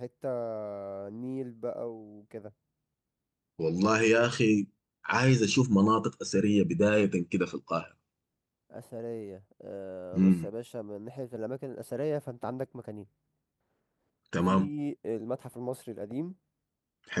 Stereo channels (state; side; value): identical; both; correlation 1.00